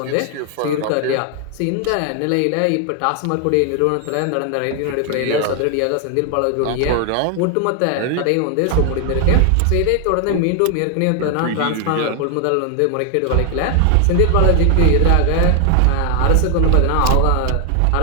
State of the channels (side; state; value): both; different; correlation 0.00